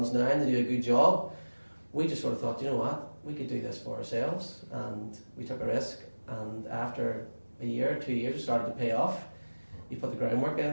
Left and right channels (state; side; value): inverted; both; correlation -1.00